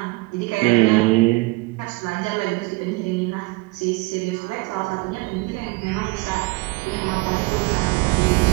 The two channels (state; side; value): quieter; left; 24.8 dB